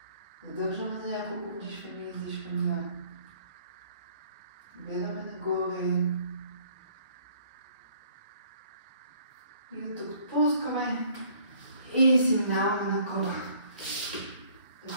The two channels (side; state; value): both; inverted; correlation -0.59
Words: Задържаме за няколко вдишвания и издишвания. Гледаме нагоре. И от тук отпускаме. И си минаваме на кобра.